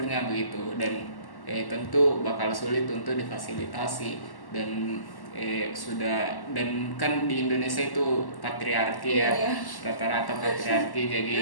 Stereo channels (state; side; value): late; right; 1.1 ms